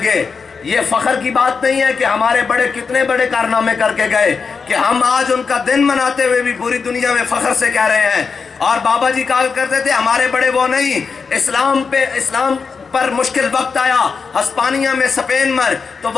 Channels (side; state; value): right; quieter; 5.3 dB